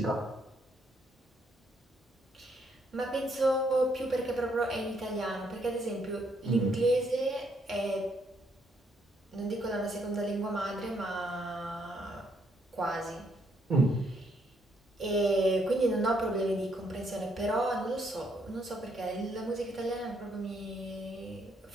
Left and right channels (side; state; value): both; normal; correlation 0.72